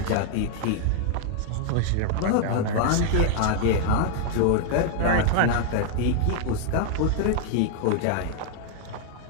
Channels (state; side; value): different; both; correlation 0.00